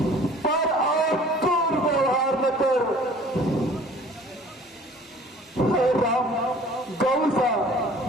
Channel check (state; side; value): normal; both; correlation 0.50